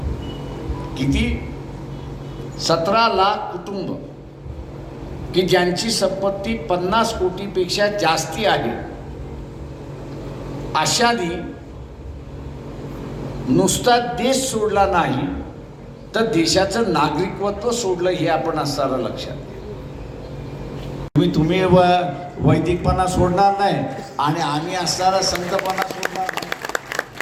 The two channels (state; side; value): identical; both; correlation 1.00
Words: किती? 17 लाख कुटुंब की ज्यांची संपत्ती 50 कोटीपेक्षा जास्ती आहे अशानी नुसता देश सोडला नाही तर देशाचं नागरिकत्व सोडलं हे आपण असताना लक्षात घ्या. तुम्ही वैदिकपणा सोडणार नाही आणि आम्ही असताना संतपणा सोडणार नाही.